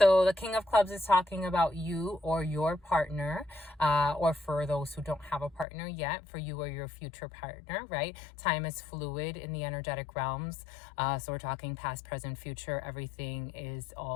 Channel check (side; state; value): right; drops out; at 5.7 s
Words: the King of Clubs is talking about you or your partner, or for those who don't have a partner yet, for you or your future partner, right? Time is fluid in the energetic realms. So we're talking past, present, future. Everything is